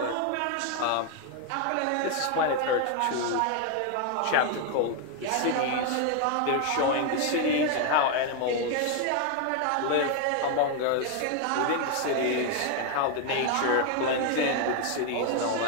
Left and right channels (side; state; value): both; different; correlation 0.01